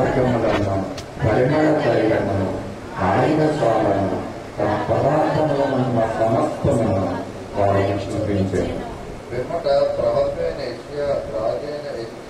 పరిమళ తైలమును ఆయన స్వాలను తన పదార్థంలో ఉన్న సమస్తమును వారికి చూపించారు. పిమ్మట ప్రవక్తైన యెషయా రాజైన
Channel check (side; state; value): both; identical; correlation 1.00